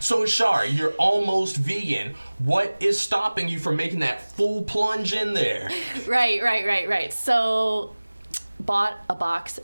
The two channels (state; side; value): inverted; both; correlation -1.00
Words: So, Char, you're almost vegan. What is stopping you from making that full plunge in there? Right. So, bought a box